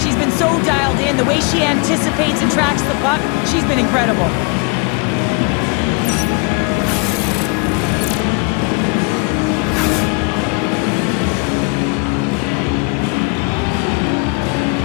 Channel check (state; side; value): quieter; right; 32.1 dB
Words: been so dialed in. The way she anticipates and tracks the puck, she's been incredible.